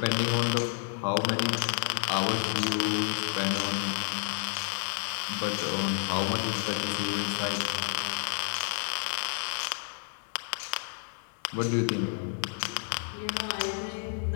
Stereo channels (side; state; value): right; silent; 58 dB below the other